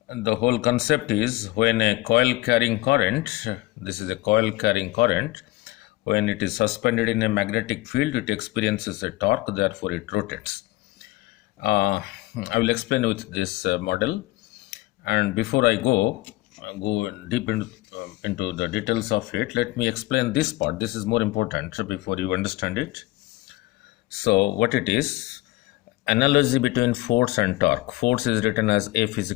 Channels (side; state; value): right; quieter; 19.8 dB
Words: the whole concept is when a coil carrying current, this is a coil carrying current, when it is suspended in a magnetic field, it experiences a torque, therefore it rotates. Uh, I will explain with this model. And before I go deep into the details of it, let me explain this part. This is more important before you understand it. So what it is, analogy between force and torque. Force is written as F is